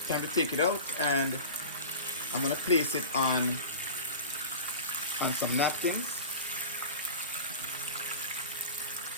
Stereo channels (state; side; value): inverted; both; correlation -0.33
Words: Time to take it out, and I'm gonna place it on some napkins.